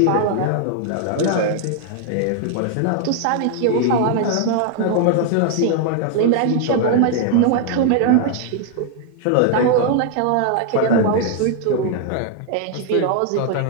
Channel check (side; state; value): both; different; correlation 0.00